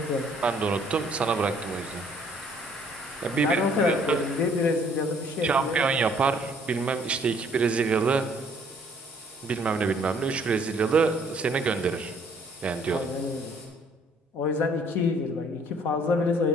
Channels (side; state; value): both; normal; correlation 0.61